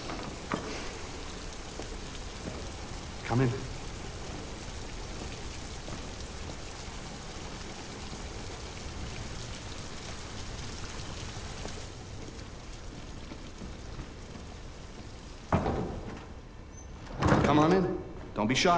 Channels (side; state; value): both; identical; correlation 1.00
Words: Come in. Come on in. Don't be